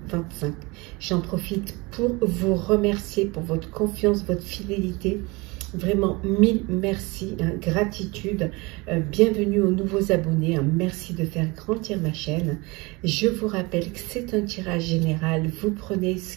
J'en profite pour vous remercier pour votre confiance, votre fidélité. Vraiment, mille merci, gratitude, bienvenue aux nouveaux abonnés, merci de faire grandir ma chaîne. Je vous rappelle que c'est un tirage général, vous prenez ce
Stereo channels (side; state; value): left; quieter; 25.3 dB